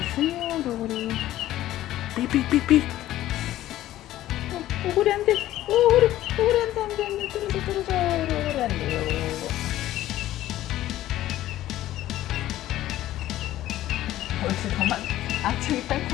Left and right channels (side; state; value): right; quieter; 14.2 dB